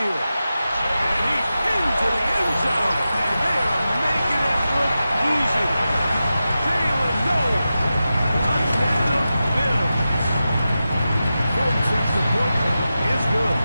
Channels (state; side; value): inverted; both; correlation -0.92